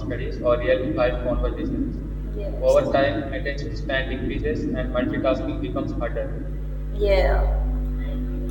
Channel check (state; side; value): identical; both; correlation 1.00